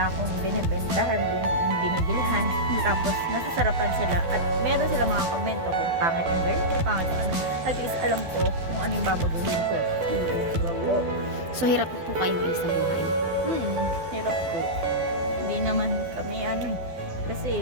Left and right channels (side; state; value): left; late; 12 ms